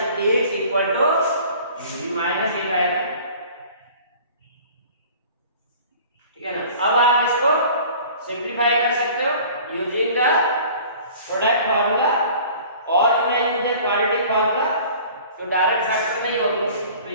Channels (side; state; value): both; inverted; correlation -0.47